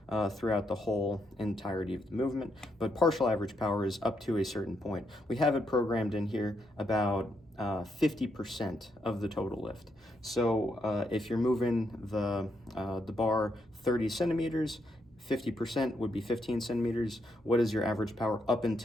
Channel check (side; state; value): both; normal; correlation 0.79